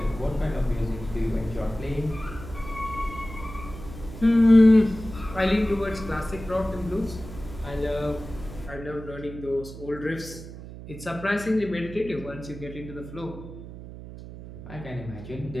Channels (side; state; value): right; noise; hum, 13 dB below the sound